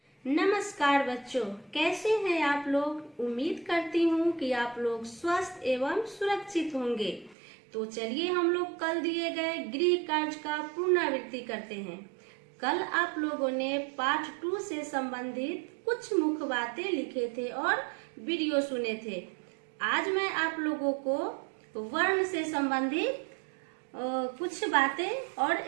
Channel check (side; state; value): left; drops out; at 7.4 s